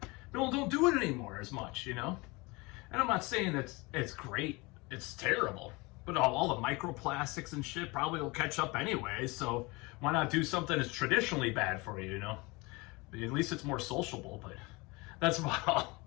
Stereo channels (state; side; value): quieter; right; 25.1 dB